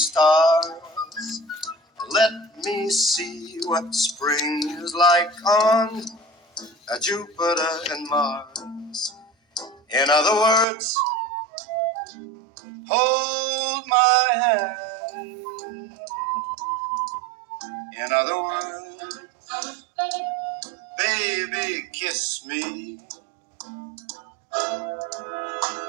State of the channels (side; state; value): left; drops out; at 10.7 s